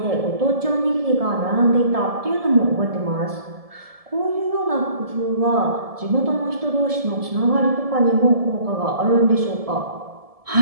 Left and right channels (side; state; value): left; late; 1.7 ms